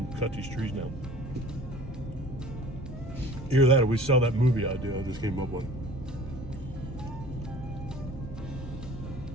cut these trees down. Either that or we sell that movie idea I just came up with.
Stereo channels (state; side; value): normal; both; correlation 0.47